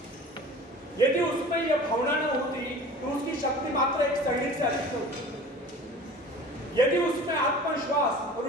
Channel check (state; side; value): normal; both; correlation 0.41